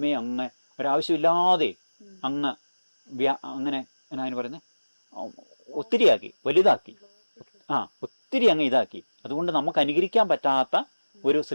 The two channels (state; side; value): inverted; both; correlation -1.00